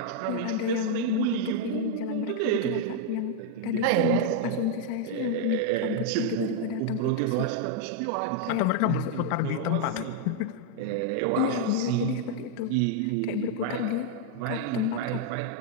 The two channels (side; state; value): both; different; correlation 0.00